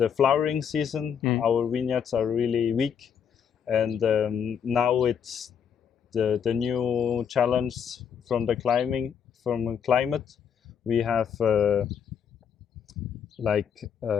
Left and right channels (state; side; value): quieter; right; 7.7 dB